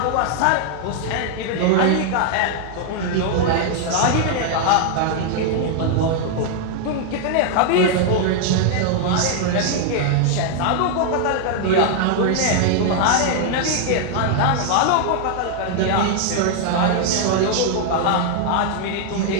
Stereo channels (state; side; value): different; both; correlation 0.00